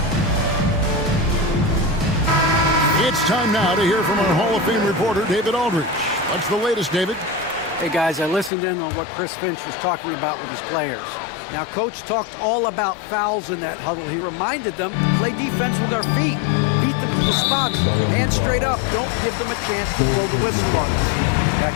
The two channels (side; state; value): right; drops out; at 8.5 s